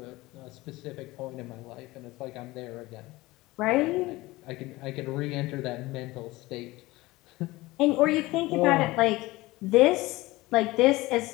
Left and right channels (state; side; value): quieter; right; 20.0 dB